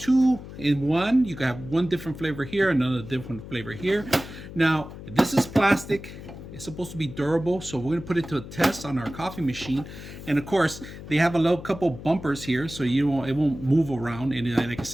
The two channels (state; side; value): noise; left; hum, 13 dB below the sound